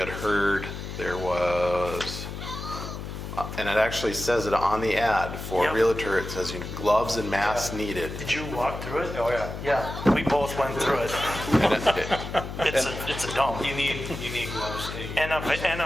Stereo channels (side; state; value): left; noise; hum, 8 dB below the sound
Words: heard there was, and it actually says it on the ad for Yep. realtor, it says gloves and masks needed. Did you walk through it? Oh, yeah. Yeah, we both went through it. And It's a dump. You need gloves.